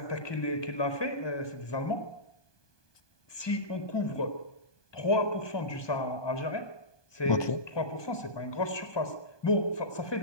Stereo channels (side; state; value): right; late; 1.2 ms